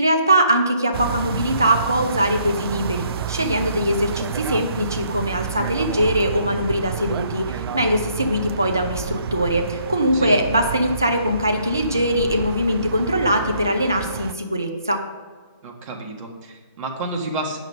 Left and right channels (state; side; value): inverted; both; correlation -0.67